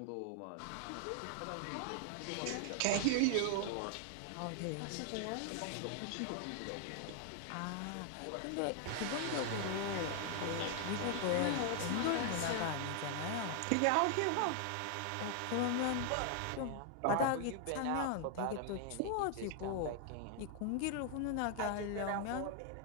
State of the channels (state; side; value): different; both; correlation 0.00